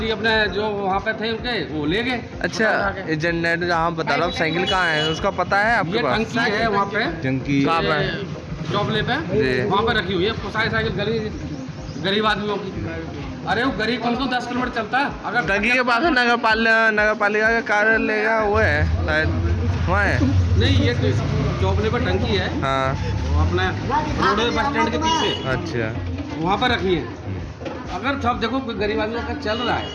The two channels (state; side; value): identical; both; correlation 1.00